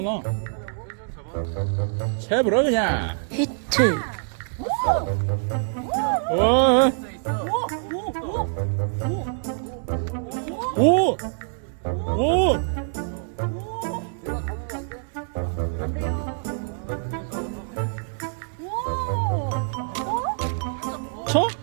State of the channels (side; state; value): left; silent; digital silence